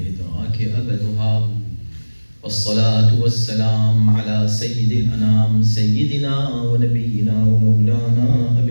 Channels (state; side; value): inverted; both; correlation -1.00